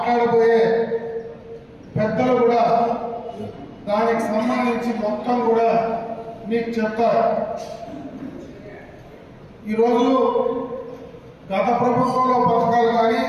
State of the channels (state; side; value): identical; both; correlation 1.00